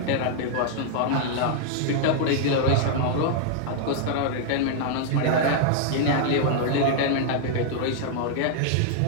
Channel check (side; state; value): both; different; correlation -0.01